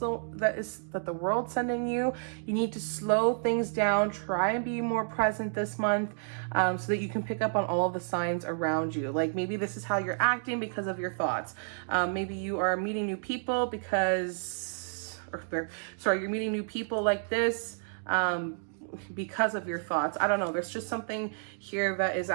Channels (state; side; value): silent; left; digital silence